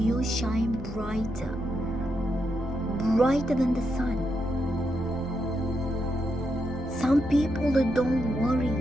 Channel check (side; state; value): both; normal; correlation 0.82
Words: shine brighter than the sun. Some people that don't worry,